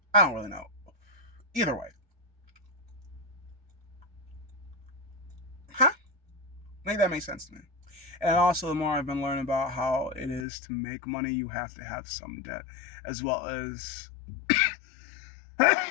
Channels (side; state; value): right; drops out; at 10.5 s